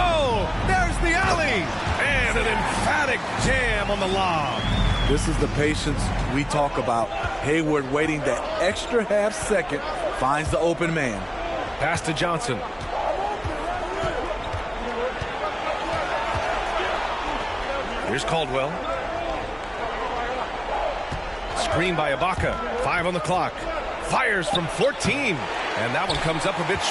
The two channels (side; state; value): both; identical; correlation 1.00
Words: there's the alley. And an emphatic jam on the lob. This is the patience we talk about. Hayward waiting that extra half second, finds the open man. Pass to Johnson. Here's Caldwell. Screen by Ibaka. 5 on the clock. Fires from 14. And that one comes up a bit